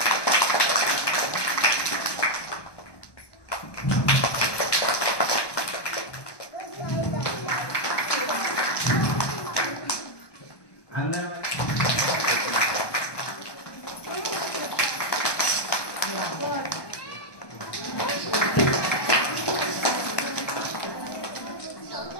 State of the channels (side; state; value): right; late; 1.2 ms